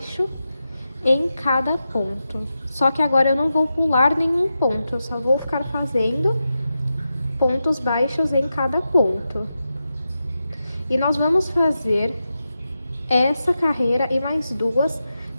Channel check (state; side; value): inverted; both; correlation -0.90